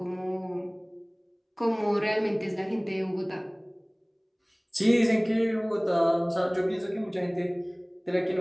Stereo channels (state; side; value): identical; both; correlation 1.00